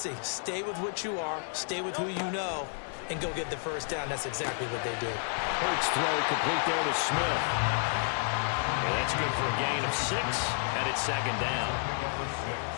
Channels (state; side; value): silent; right; 57 dB below the other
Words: Stay with what you are, stay with who you know, and go get the first down. That's exactly what they did. Hurts throw complete there to Smith. And that's good for a gain of 6, and it's 2nd down.